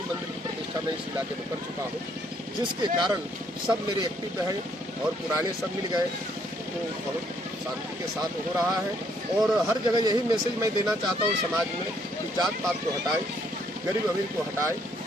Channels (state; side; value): normal; both; correlation 0.68